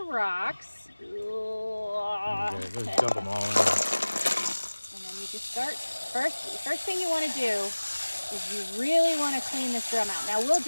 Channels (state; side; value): inverted; both; correlation -1.00